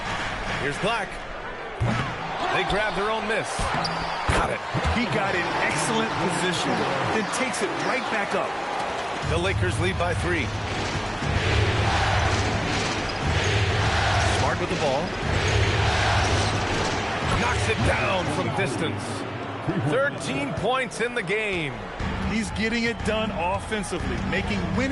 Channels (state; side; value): identical; both; correlation 1.00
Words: Here's Black. They grab their own miss. Got it. He got in excellent position, then takes it right back up. The Lakers lead by 3. Smart with the ball. Knocks it down from distance. 13 points in the game. He's getting it done offensively, making